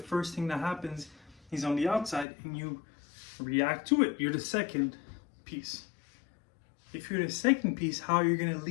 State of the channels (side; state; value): right; drops out; at 2.2 s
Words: thing that happens is on the outside and you react to it. You're the second piece. If you're the second piece, how are you going to